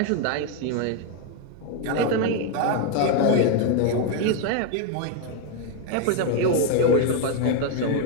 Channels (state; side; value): different; both; correlation 0.01